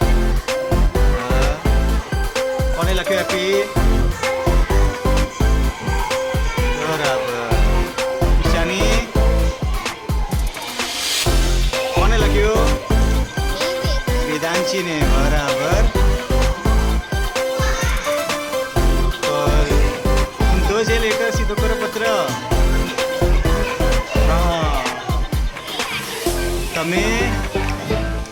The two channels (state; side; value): identical; both; correlation 1.00